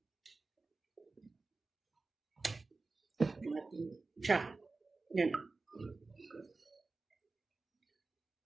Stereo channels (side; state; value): left; quieter; 3.7 dB